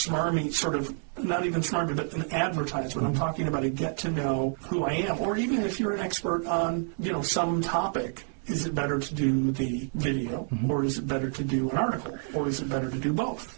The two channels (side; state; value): left; silent; 59 dB below the other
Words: sort of, not even smarmy, but an advertisement. I'm talking about a get to know who I am. Or even if you're an expert on, some topic, is it better to do the video, or is it better to do an article, or is it better to do